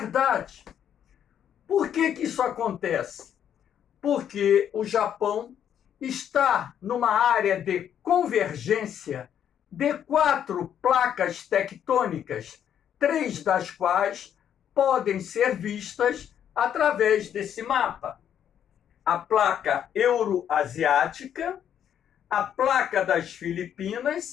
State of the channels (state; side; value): quieter; right; 9.4 dB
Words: Por que isso acontece? Porque o Japão está numa área de convergência de 4 placas tectônicas, 3 das quais podem ser vistas através desse mapa. A placa euroasiática, a placa das